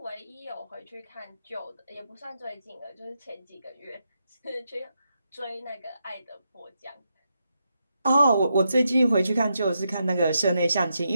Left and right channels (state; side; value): inverted; both; correlation -0.83